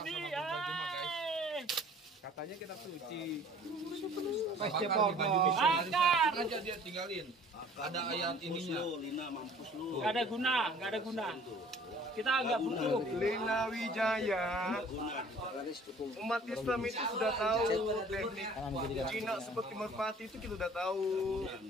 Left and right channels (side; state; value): both; normal; correlation 0.51